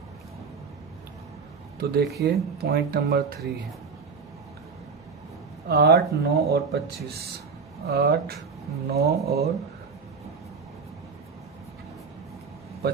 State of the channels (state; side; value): quieter; left; 5.1 dB